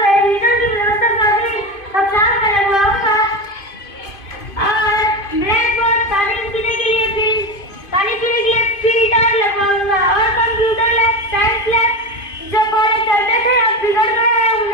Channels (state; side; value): late; right; 2.5 ms